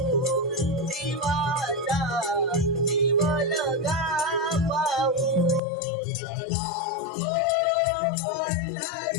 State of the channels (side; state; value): right; drops out; at 5.6 s